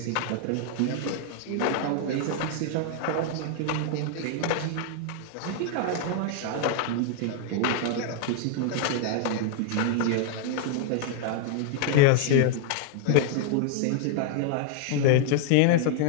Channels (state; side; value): different; both; correlation 0.00